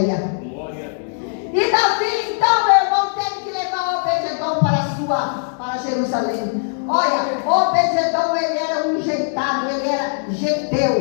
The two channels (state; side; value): silent; right; 65 dB below the other